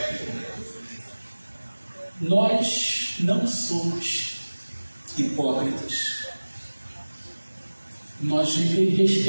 Nós não somos hipócritas. Nós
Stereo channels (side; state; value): both; inverted; correlation -1.00